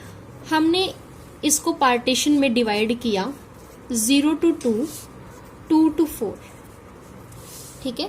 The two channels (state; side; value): identical; both; correlation 1.00